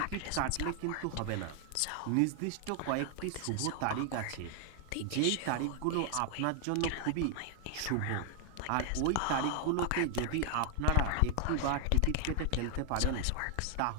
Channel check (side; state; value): both; different; correlation 0.00